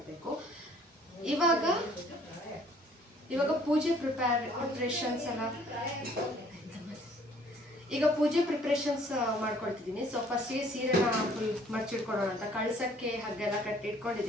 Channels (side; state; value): both; normal; correlation 0.58